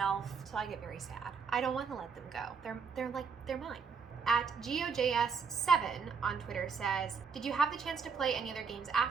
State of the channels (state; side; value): quieter; left; 5.6 dB